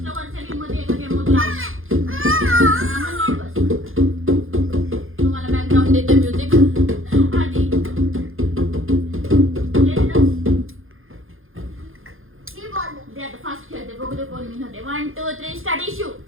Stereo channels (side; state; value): left; late; 0.60 ms